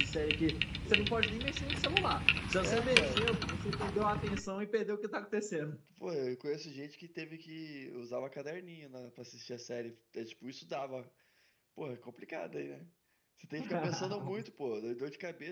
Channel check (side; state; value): both; identical; correlation 1.00